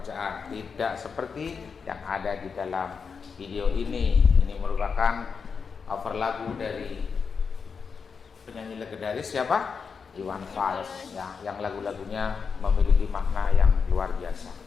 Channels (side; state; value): right; quieter; 5.7 dB